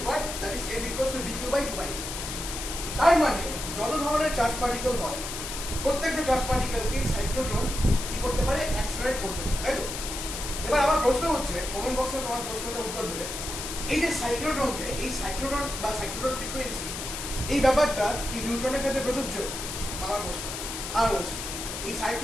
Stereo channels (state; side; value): noise; left; hiss, 6 dB below the sound